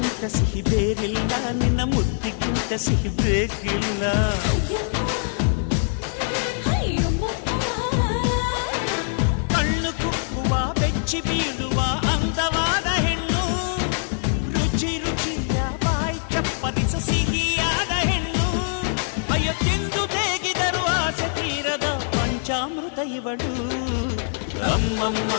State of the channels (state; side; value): silent; right; 63 dB below the other